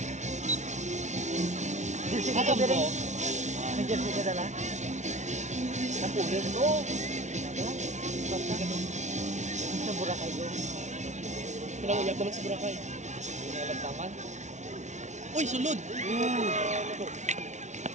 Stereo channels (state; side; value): late; left; 0.34 ms